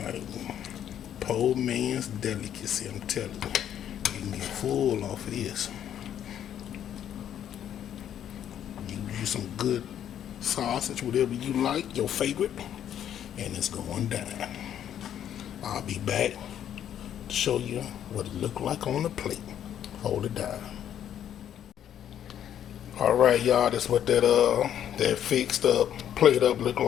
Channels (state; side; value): quieter; right; 10.1 dB